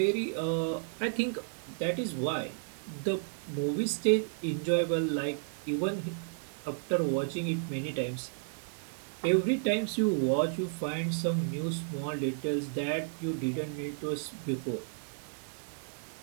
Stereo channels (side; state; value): left; silent; digital silence